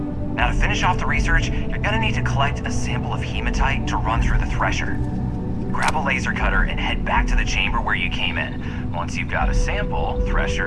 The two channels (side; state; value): both; identical; correlation 1.00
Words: Now to finish off the research, you're gonna need to collect a sample of hematite to run through the thresher. Grab a laser cutter and head back to the chamber where you came in. Once you've got a sample,